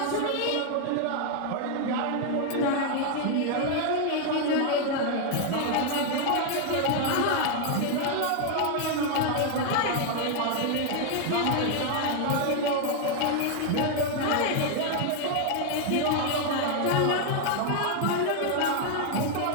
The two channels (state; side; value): different; both; correlation 0.00